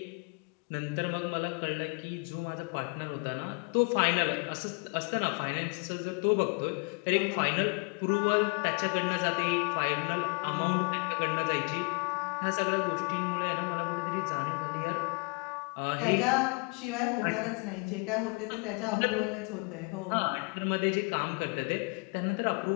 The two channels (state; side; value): quieter; right; 32.4 dB